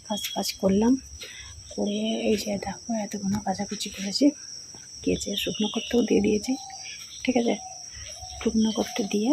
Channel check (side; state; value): both; identical; correlation 1.00